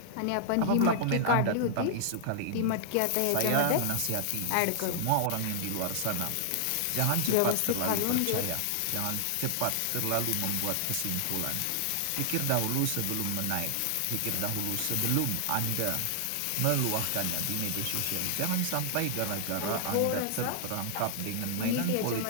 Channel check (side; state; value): both; different; correlation -0.01